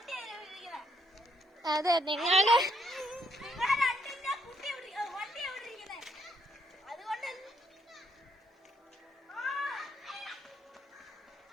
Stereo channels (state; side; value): normal; both; correlation 0.71